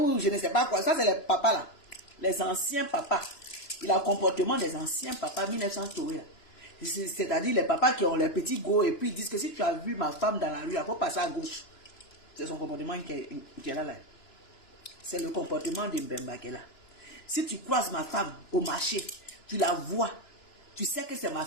je ne sais pas quoi. Ça, c'est les papas là, les anciens papas. Il a le comportement des anciens papas 1900 tourés. C'est-à-dire les papas qui ont les petits go et puis ils disent que si tu as vu ma femme dans la rue, il faut passer à gauche. C'est son comportement qui est là. C'est le comportement de Mbemba qui est là. Si tu croises ma femme au marché, tu la vois, tu sais que c'est ma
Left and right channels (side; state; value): right; late; 2.9 ms